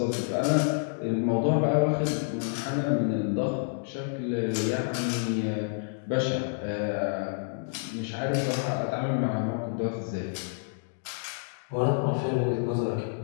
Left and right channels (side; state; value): right; silent; digital silence